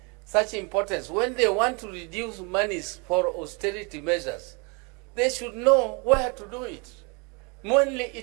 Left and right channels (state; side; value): quieter; left; 31.7 dB